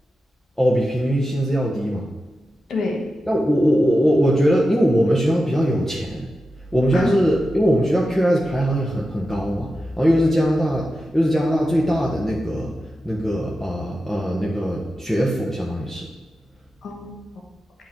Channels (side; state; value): both; normal; correlation 0.91